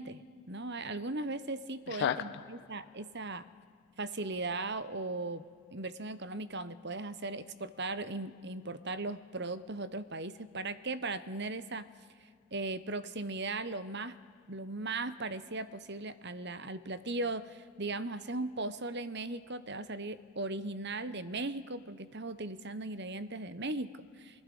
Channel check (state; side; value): normal; both; correlation -0.03